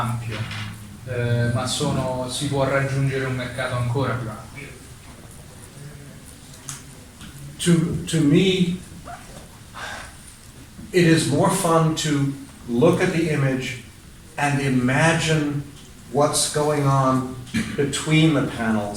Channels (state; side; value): identical; both; correlation 1.00